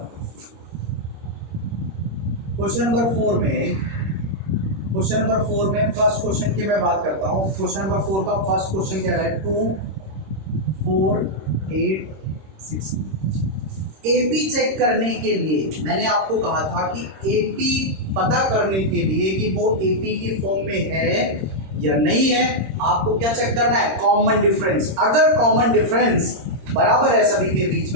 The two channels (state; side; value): late; left; 26 ms